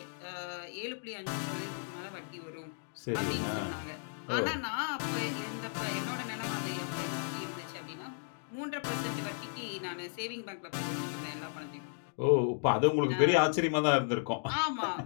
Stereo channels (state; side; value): silent; right; digital silence